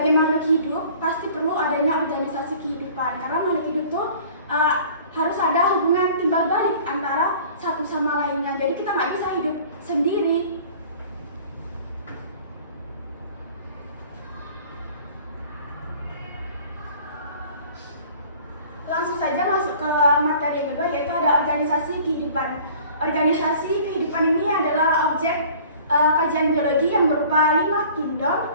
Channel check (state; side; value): inverted; both; correlation -0.49